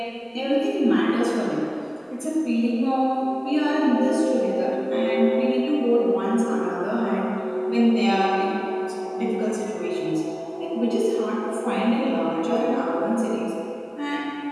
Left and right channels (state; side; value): identical; both; correlation 1.00